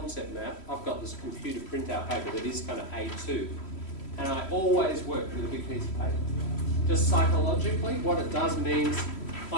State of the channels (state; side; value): late; right; 3.1 ms